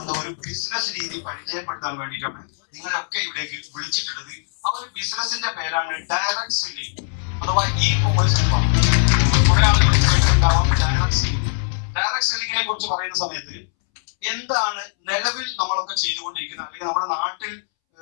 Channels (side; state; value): right; silent; 65 dB below the other